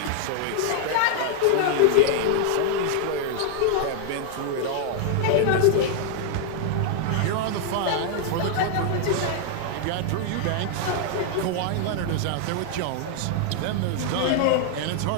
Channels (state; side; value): different; both; correlation 0.00